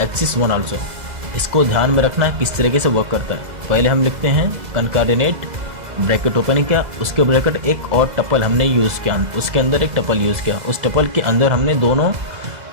1 आल्सो। इसको ध्यान में रखना है किस तरीके से वर्क करता है। पहले हम लिखते हैं कंकार्डिनेट ब्रैकेट ओपन किया, उसके ब्रैकेट एक और टपल हमने यूज़ किया, उसके अंदर एक टपल यूज़ किया, उस टपल के अंदर हमने दोनों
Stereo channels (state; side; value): late; left; 2.0 ms